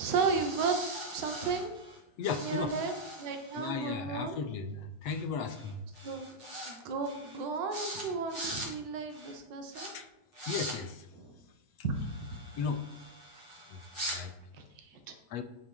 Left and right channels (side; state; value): right; late; 8.1 ms